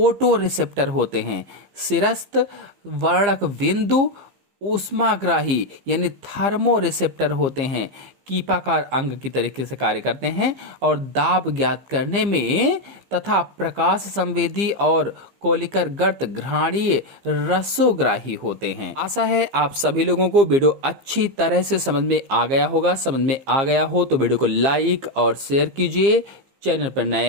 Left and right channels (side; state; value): left; late; 15 ms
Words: रिसेप्टर होते हैं। सिरस्थ वर्णक बिंदु ऊष्माग्राही यानी थर्मो रिसेप्टर होते हैं, कीपाकार अंग की तरीके से कार्य करते हैं और दाब ज्ञात करने में, तथा प्रकाश संवेदी और कोलिकर गर्त घ्राणीय रसोग्राही होते हैं। आशा है आप सभी लोगों को वीडियो अच्छी तरह से समझ में आ गया होगा। समझ में आ गया हो तो वीडियो को लाइक और शेयर कीजिए। चैनल पर नए